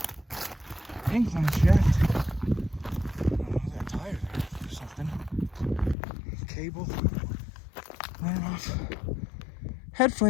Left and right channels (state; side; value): drops out; right; at 6.0 s